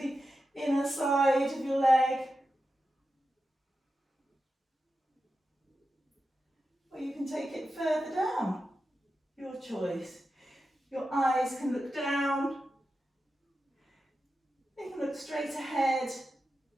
inner side of your leg. Or you can take it further down. Your choice. Your eyes can look down. They can look straight ahead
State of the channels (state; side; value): normal; both; correlation 0.91